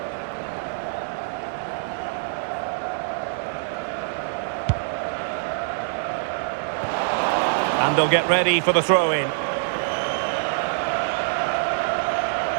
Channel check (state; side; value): silent; left; digital silence